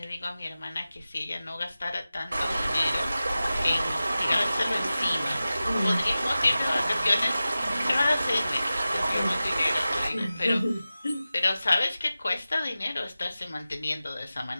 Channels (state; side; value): inverted; both; correlation -0.95